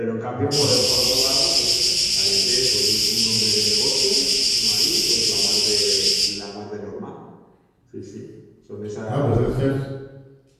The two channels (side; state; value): both; identical; correlation 1.00